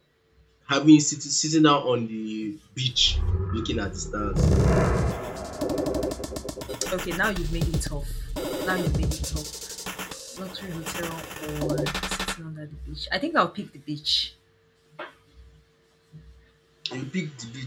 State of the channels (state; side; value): identical; both; correlation 1.00